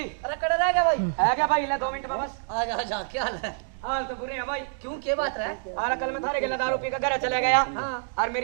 अरे कड़ा रह गया भाई। है क्या भाई? ले 2 मिनट में बस। आ जा क्या हाल है? हाल तो बुरे हैं भाई। क्यों क्या बात है? और कल मैं थारे के दारू पी कर घर चले गया हाँ। और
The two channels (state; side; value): silent; left; digital silence